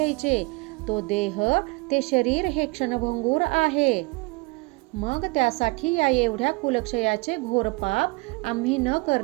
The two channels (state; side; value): quieter; left; 26.4 dB